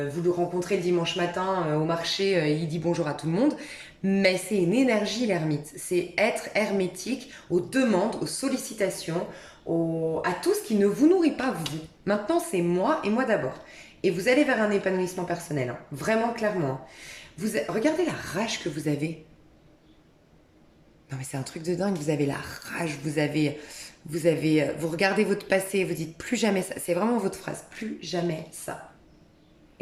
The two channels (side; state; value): both; identical; correlation 1.00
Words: le rencontrez le dimanche matin au marché, il dit bonjour à tout le monde. Mais c'est une énergie, l'ermite. C'est être hermétique aux demandes, aux sollicitations, à tout ce qui ne vous nourrit pas, vous. Maintenant, c'est moi et moi d'abord. Et vous allez vers un épanouissement personnel, hein. Vraiment, clairement. Regardez la rage que vous avez. Non, mais c'est un truc de dingue. Vous avez la rage, vous regardez votre passé, vous dites plus jamais ça. C'est vraiment votre phrase, plus jamais ça.